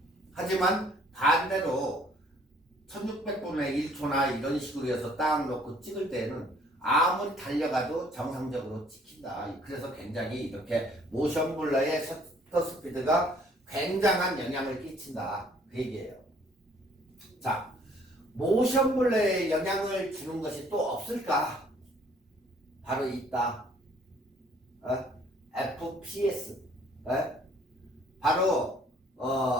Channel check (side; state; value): both; normal; correlation 0.60